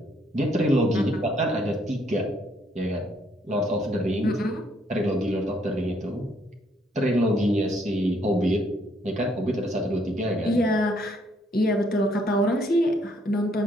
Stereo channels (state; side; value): normal; both; correlation 0.69